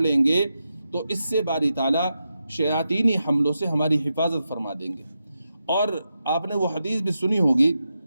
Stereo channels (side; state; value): both; inverted; correlation -0.87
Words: گے تو اس سے باری تعالیٰ شیاطینی حملوں سے ہماری حفاظت فرما دیں گے. اور آپ نے وہ حدیث بھی سنی ہوگی